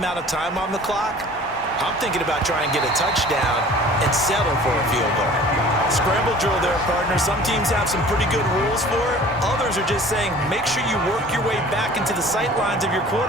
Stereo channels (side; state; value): both; normal; correlation 0.47